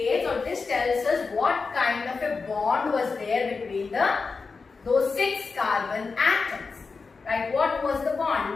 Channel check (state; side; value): quieter; right; 4.6 dB